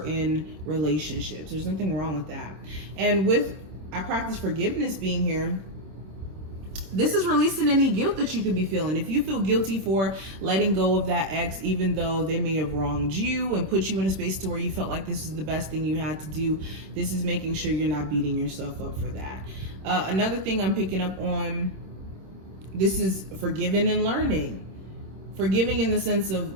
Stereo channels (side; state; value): left; late; 26 ms